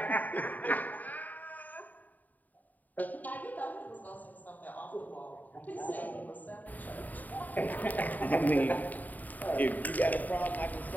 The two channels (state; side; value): late; right; 0.081 ms